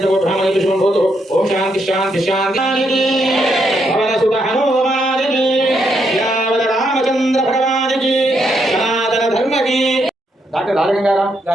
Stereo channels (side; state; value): both; normal; correlation 0.77